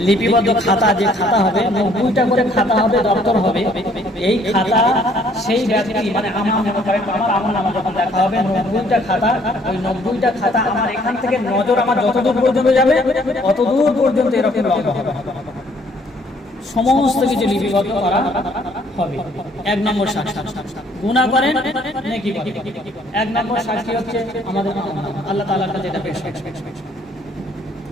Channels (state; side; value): normal; both; correlation 0.62